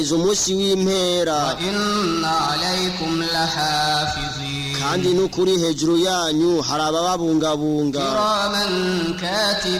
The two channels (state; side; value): identical; both; correlation 1.00